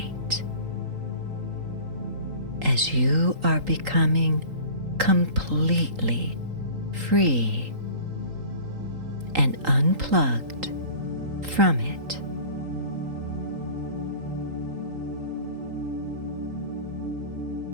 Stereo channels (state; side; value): late; left; 3.8 ms